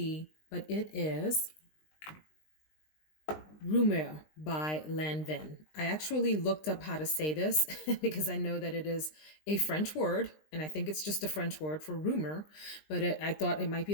but it is Rumeur by Lanvin. I actually looked up how to say this because I know that it is a French word, and I think it's just a French word for rumor, but I thought it might be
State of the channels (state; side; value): late; right; 20 ms